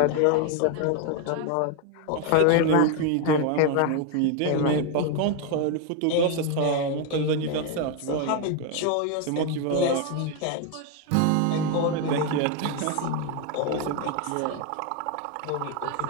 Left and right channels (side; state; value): both; different; correlation 0.01